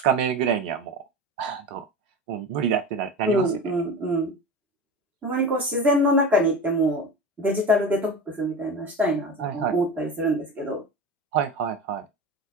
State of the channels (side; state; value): both; normal; correlation 0.28